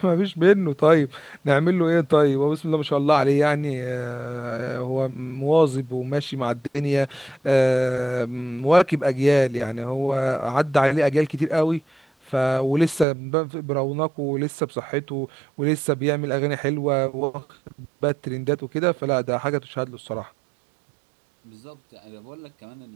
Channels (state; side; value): drops out; left; at 13.1 s